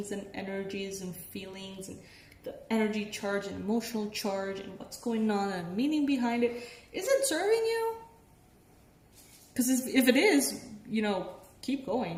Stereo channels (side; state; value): both; identical; correlation 1.00